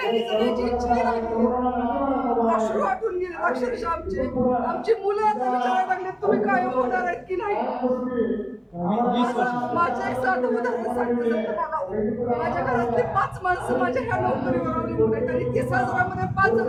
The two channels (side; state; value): both; identical; correlation 1.00